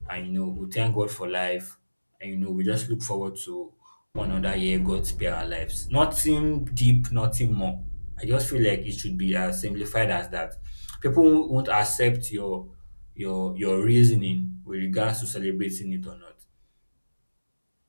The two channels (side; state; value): both; inverted; correlation -1.00